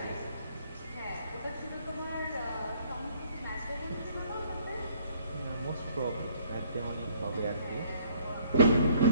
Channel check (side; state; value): both; inverted; correlation -0.62